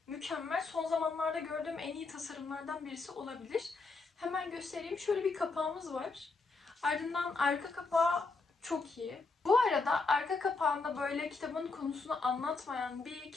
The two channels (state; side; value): quieter; right; 4.0 dB